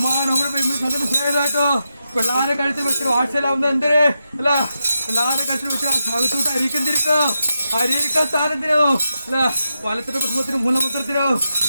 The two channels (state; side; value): inverted; both; correlation -0.86